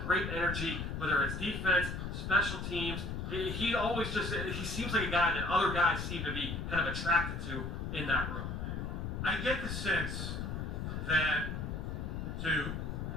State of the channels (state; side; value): noise; left; rumble, 4 dB below the sound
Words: great energy, whether it's defense, special teams. He seems like a guy that other guys seem to be kind of attracted to in that room. I get the sense that, to